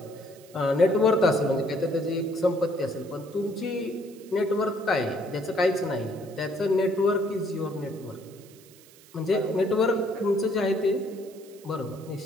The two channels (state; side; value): noise; right; hiss, 24 dB below the sound